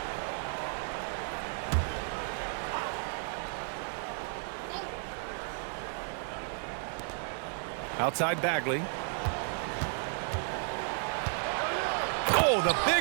Outside Bagley. Oh, the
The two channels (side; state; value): left; silent; 56 dB below the other